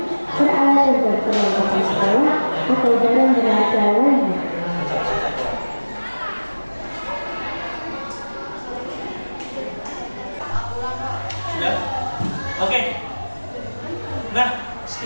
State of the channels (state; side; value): inverted; both; correlation -1.00